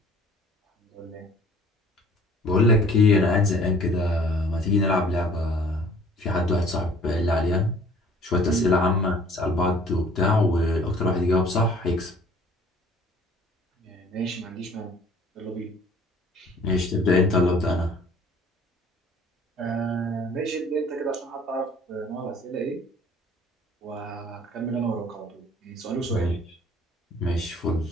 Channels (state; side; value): normal; both; correlation 0.53